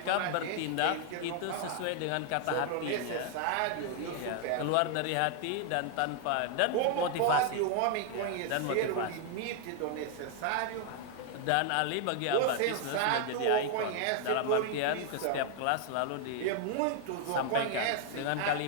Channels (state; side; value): different; both; correlation 0.00